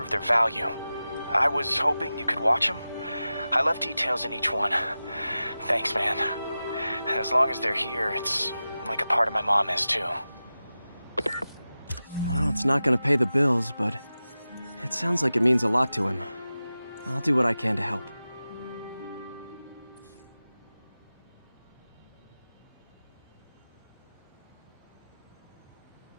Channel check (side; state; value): both; inverted; correlation -0.95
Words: their value. I was hoping you could watch them. I left details in each one. Thanks, man. As long as they're here, it's like a part of my mom is, too. Well, it's not gonna pay the bills, but it sounds like it means a lot to him. I'll do what I can to help.